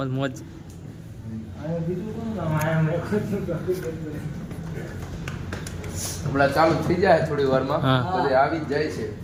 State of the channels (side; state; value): both; identical; correlation 1.00